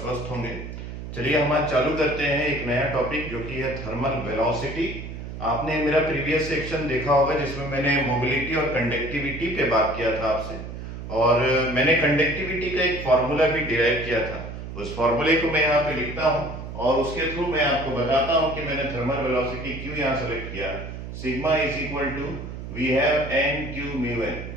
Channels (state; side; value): noise; right; hum, 9 dB below the sound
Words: होंगे। चलिए हम आज चालू करते हैं एक नया टॉपिक जो कि है थर्मल वेलोसिटी। आपने मेरा प्रीवियस सेक्शन देखा होगा जिसमें मैंने मोबिलिटी और कंडक्टिविटी पे बात किया था आपसे, और मैंने कंडक्टिविटी का एक फॉर्मूला भी डिराइव किया था। उस फॉर्मूले को मैं यहाँ पे लिखता हूँ और उसके थ्रू मैं आपको बताता हूँ कि मैंने थर्मल वेलोसिटी क्यों यहाँ सेलेक्ट किया। Sigma is equal to we have n q mu n.